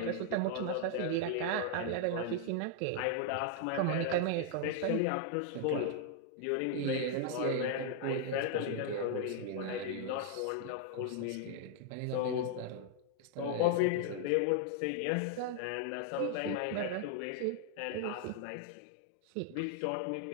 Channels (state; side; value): different; both; correlation 0.00